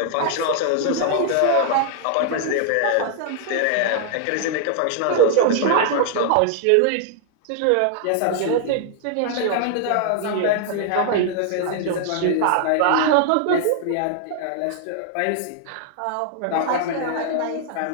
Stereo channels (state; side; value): different; both; correlation -0.01